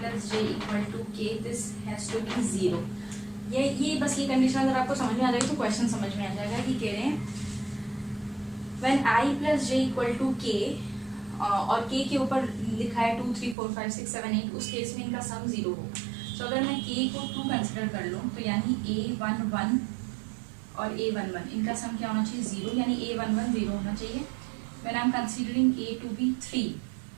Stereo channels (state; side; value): drops out; left; at 13.6 s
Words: j equal to k this has to be 0। ये बस ये कंडीशन अगर आपको समझ में आ जाएगी तो क्वेश्चन समझ में आ जाएगा कि कह रहे हैं when I plus j equal to k और k के ऊपर लिखा है 2 3 4 5 6 7 8, उस केस में इनका सम 0 हो। तो अगर मैं k को 2 कंसिडर कर लूँ तो यानी A11 और A11 इनका सम क्या होना चाहिए 0, यानी A11 0 होना चाहिए। when I am considering A to be 3,